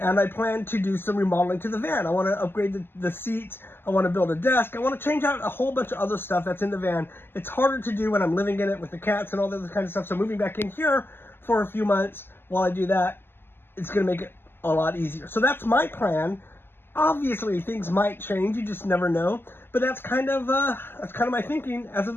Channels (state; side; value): late; right; 0.11 ms